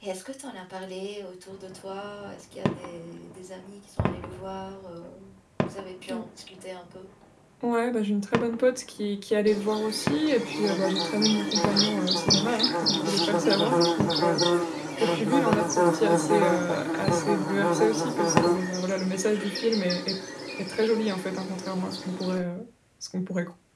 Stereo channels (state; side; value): identical; both; correlation 1.00